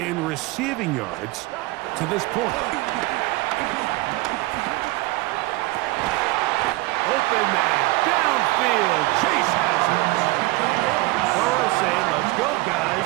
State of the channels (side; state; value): left; quieter; 21.2 dB